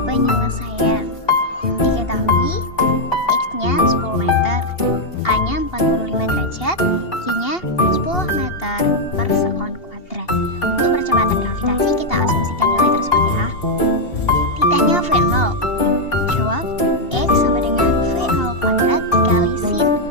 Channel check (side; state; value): right; late; 2.8 ms